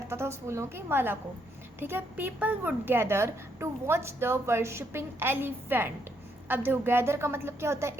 था उस फूलों की माला को, ठीक है। People would gather to watch the worshipping elephant. अब देखो गैदर का मतलब क्या होता है?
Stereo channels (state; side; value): normal; both; correlation 0.74